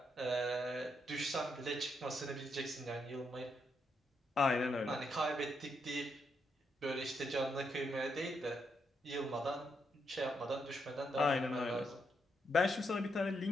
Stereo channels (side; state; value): both; normal; correlation 0.79